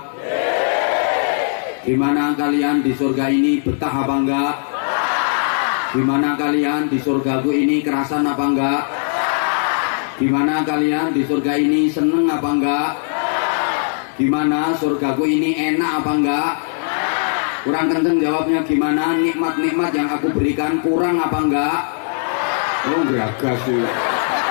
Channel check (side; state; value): right; silent; digital silence